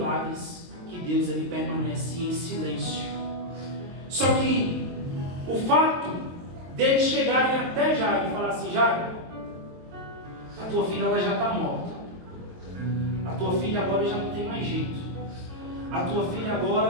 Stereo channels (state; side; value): late; left; 23 ms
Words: que Deus ele permanece em silêncio. Só que o fato deles chegarem até Jairo e falar assim: Jairo, a tua filha ela já está morta. A tua filha agora já não tem mais jeito. A tua filha